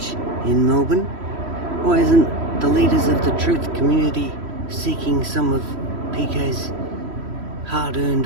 in Melbourne. Why isn't the leaders of the truth community seeking some of PK's hard-earned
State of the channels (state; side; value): late; left; 3.1 ms